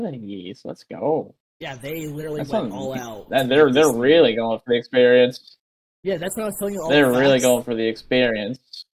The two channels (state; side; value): identical; both; correlation 1.00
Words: yeast. Let's go. Yeah, they literally went all out to make this. They're really going for the experience. Yeah, that's what I was telling you. They're the facts. Really going for the experience.